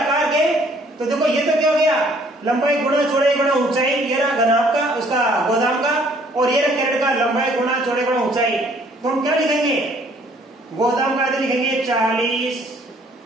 के, तो देखो ये तो क्या हो गया, लंबाई गुणा चौड़ाई गुणा ऊंचाई, ये रहा घनाभ का उसका गोदाम का, और ये रहा कैरेट का लंबाई गुणा चौड़ाई गुणा ऊंचाई। तो हम क्या लिखेंगे, गोदाम का आयतन लिखेंगे 40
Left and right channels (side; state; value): both; normal; correlation 0.61